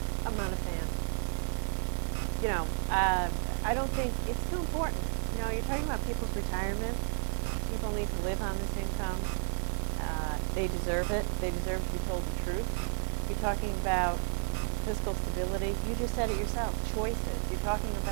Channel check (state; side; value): silent; left; digital silence